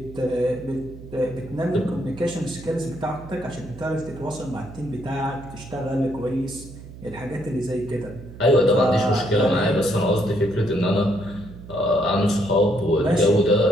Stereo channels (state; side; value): noise; right; hum, 15 dB below the sound